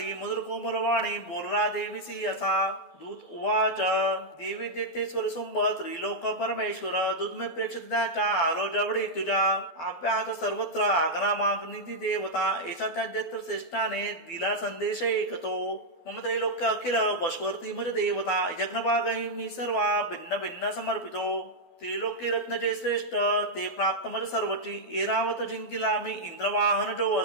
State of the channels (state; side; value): late; right; 12 ms